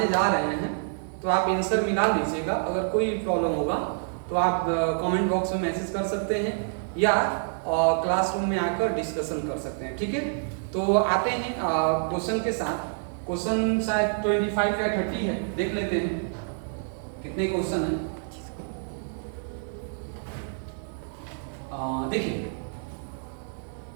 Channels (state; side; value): silent; left; digital silence